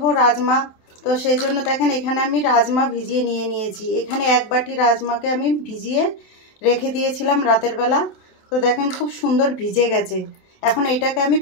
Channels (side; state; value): right; late; 27 ms